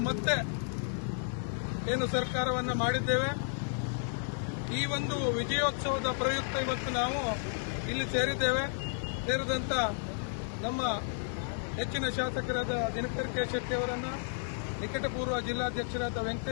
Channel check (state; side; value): silent; right; 56 dB below the other